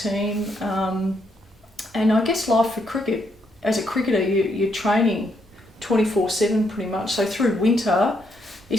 and I guess life for cricket, as a cricketer you're training 24/7 pretty much. So through winter,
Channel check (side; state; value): both; normal; correlation 0.76